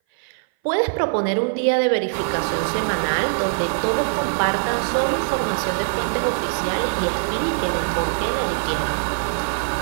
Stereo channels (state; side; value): silent; left; 59 dB below the other